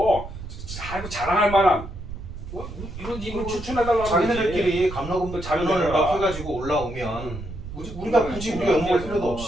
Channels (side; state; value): right; noise; rumble, 10 dB below the sound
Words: 아이고 자랑할 만한 이런 인물 추천해달라고 자기네들끼리 감로금도 자료를 막 해가지고 올라오면 우리가 굳이 우리가 연구할 필요도